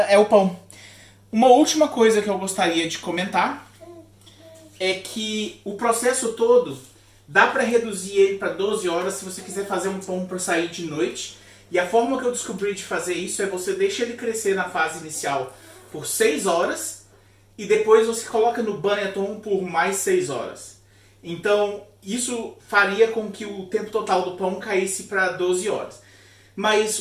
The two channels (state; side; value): identical; both; correlation 1.00